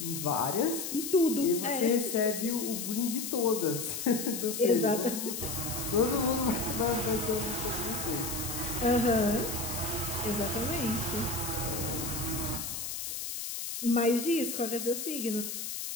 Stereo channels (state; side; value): noise; left; hiss, 5 dB below the sound